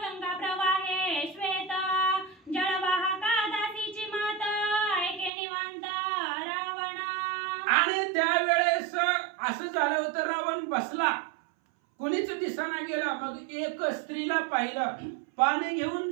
गंगा प्रवाहे श्वेत, जळवाहका दासीची मात ऐके निवांत रावण. आणि त्यावेळेस असं झालं होतं, रावण बसला, कोणीच दिसाना गेला. मग एक स्त्रीला पाहिलं, पाणी घेऊन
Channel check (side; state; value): left; drops out; at 5.3 s